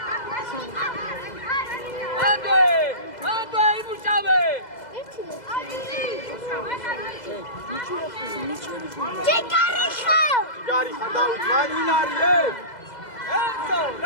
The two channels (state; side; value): late; right; 2.0 ms